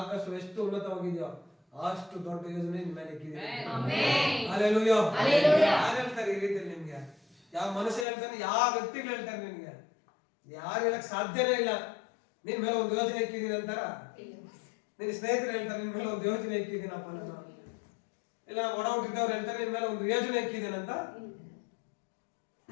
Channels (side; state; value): right; drops out; at 8.1 s